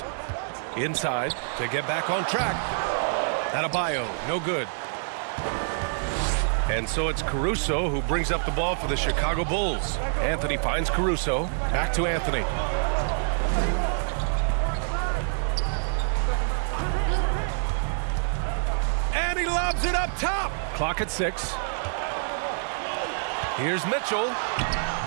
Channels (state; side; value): silent; left; digital silence